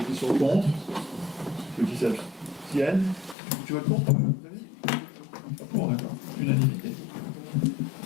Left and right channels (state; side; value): drops out; right; at 3.4 s